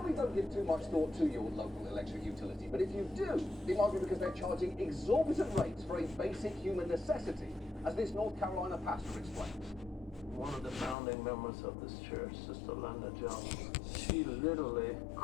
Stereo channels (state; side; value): drops out; right; at 11.0 s